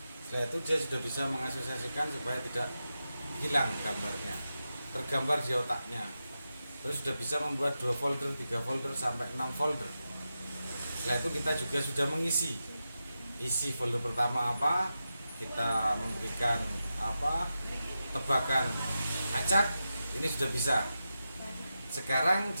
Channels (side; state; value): both; inverted; correlation -0.90